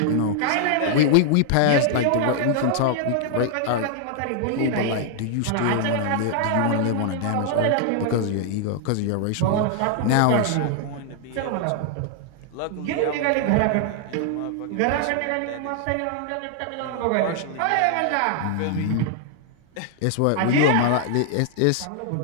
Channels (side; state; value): both; different; correlation 0.00